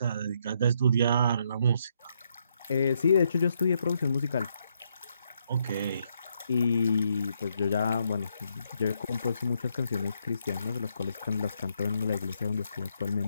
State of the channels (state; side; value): inverted; both; correlation -0.76